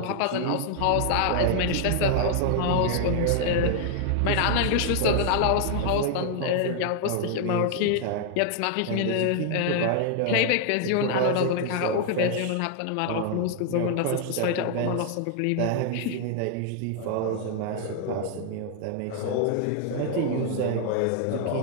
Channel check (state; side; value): different; both; correlation 0.00